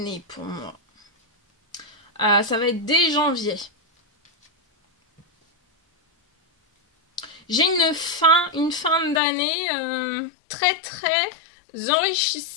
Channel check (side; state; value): right; drops out; at 9.2 s